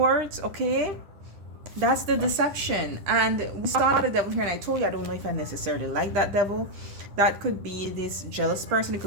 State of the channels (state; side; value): late; left; 9.8 ms